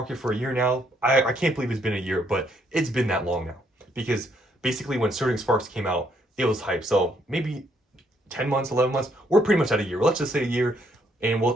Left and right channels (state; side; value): normal; both; correlation 0.71